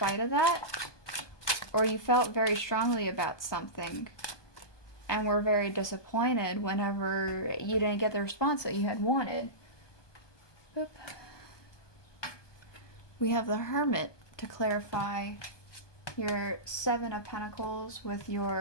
of that, or you felt very strongly about something and were very disappointed whenever you didn't get the response that you had wanted. Boop. We have the Hermit to clarify your 7 of Pentacles with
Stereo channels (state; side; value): late; right; 1.2 ms